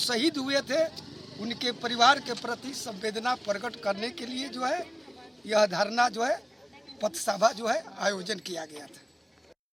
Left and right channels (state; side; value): identical; both; correlation 1.00